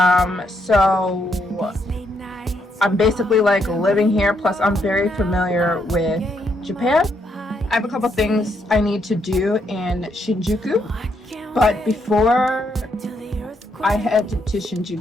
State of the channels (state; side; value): normal; both; correlation 0.76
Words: So I'm basically like living here, plus I'm very familiar with Japan. I have a couple things I need to do in Shinjuku, but before I head to